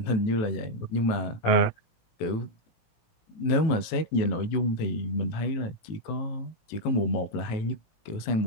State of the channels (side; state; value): right; late; 18 ms